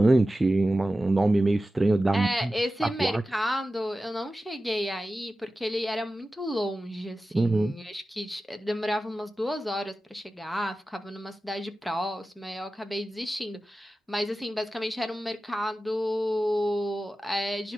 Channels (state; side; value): normal; both; correlation 0.94